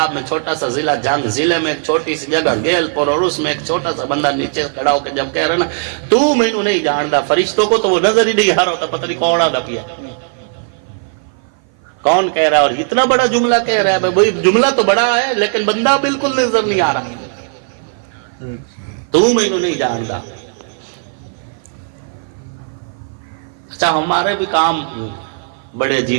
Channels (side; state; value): left; silent; 56 dB below the other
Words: میں چھوٹا سا ضلع جنگ, ضلع میں ایک چھوٹی سی جگہ گیل پور, اور اس میں ایک چھوٹا سا بندہ نیچے کھڑا ہو کے جب کہہ رہا نا تو مینوں نہیں جاندا, فرشتوں کو تو وہ نظر ہی نہیں آ رہا ہوتا, پتہ نہیں کوڑا دپیا کون کہہ رہا ہے. اور اتنا بڑا جملہ کہہ رہا ہے, بھائی جملہ تو بڑا ہے لیکن بندہ بالکل نظر نہیں آ رہا. تو مینوں نہیں جاندا. اچھا ہمارے بھی کام بڑے